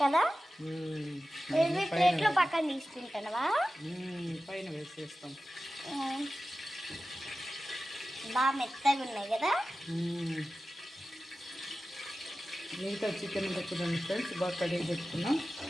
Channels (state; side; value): normal; both; correlation 0.94